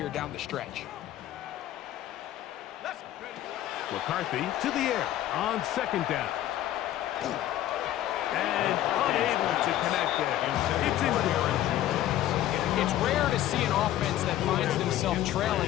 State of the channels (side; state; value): right; quieter; 13.0 dB